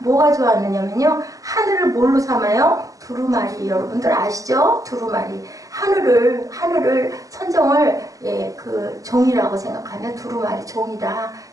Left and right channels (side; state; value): left; late; 0.16 ms